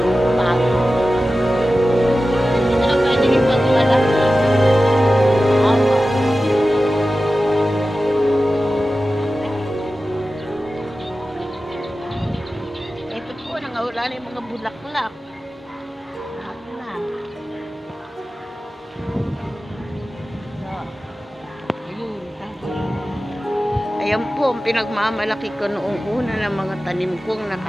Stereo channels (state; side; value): normal; both; correlation 0.94